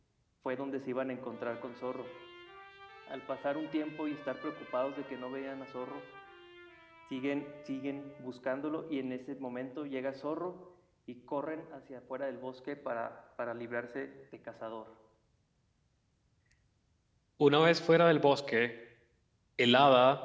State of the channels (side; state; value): both; identical; correlation 1.00